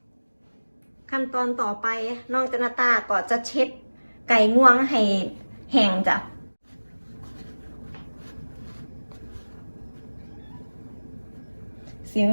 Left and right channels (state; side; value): inverted; both; correlation -1.00